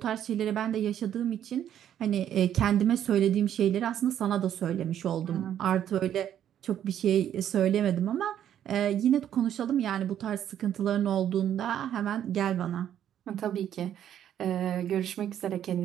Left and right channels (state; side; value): quieter; left; 10.3 dB